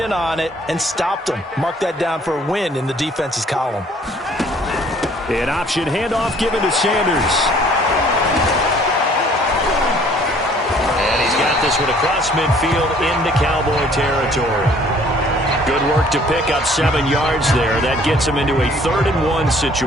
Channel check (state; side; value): normal; both; correlation 0.57